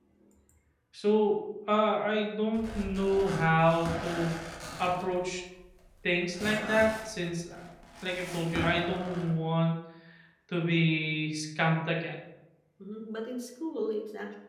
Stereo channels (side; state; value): both; identical; correlation 1.00